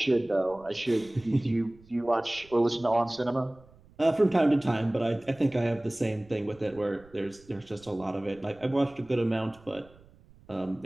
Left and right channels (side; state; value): right; noise; rumble, 26 dB below the sound